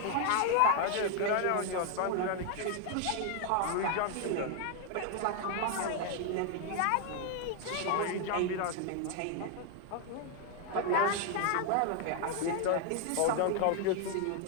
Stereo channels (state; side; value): different; both; correlation 0.00